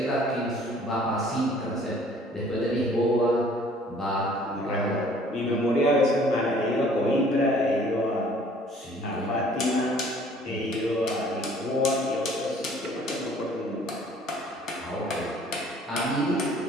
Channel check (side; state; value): both; normal; correlation 0.55